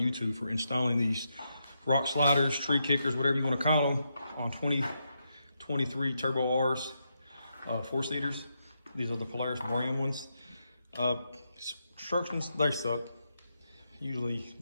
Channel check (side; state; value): both; inverted; correlation -0.83